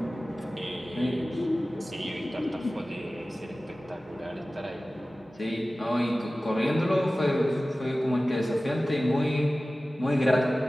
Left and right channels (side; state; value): both; normal; correlation 0.96